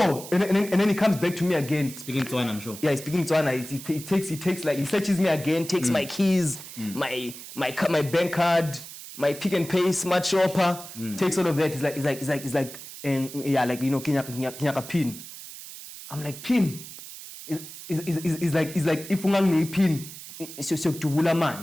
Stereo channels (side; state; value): right; noise; hiss, 13 dB below the sound